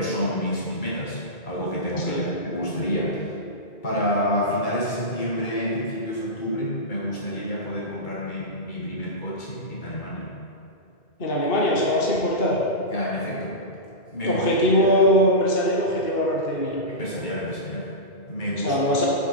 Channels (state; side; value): late; right; 2.3 ms